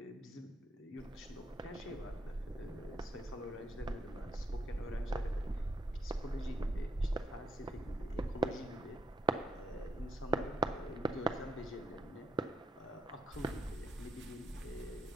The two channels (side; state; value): both; normal; correlation 0.78